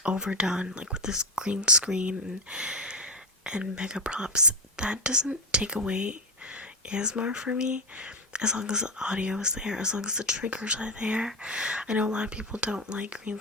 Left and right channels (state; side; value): normal; both; correlation 0.13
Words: overdone, like with this green screen and mega props. That doesn't take away ASMR for me, as long as the audio is there, as long as the triggers are there. I know a lot of people don't like green